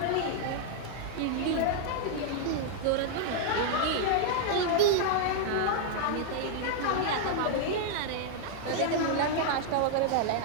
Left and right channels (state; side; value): different; both; correlation -0.01